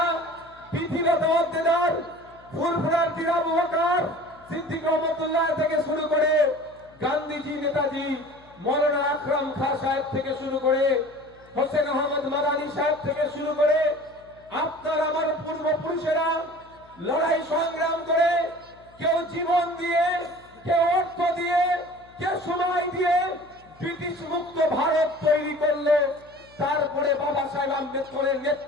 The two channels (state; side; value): noise; left; hum, 27 dB below the sound